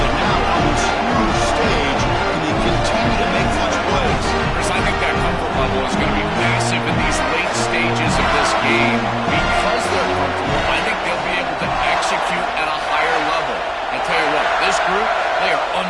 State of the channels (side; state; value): both; identical; correlation 1.00